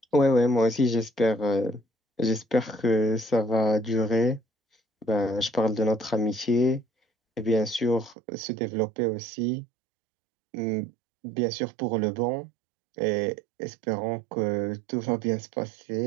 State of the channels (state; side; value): drops out; left; at 8.2 s